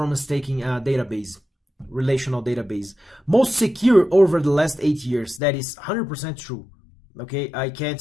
taking database, relational database. Most secure over the last 8 years. That is 100% true. Okay, I can't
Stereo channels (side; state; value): right; drops out; at 5.4 s